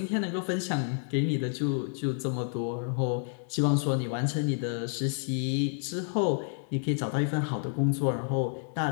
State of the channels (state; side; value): silent; right; digital silence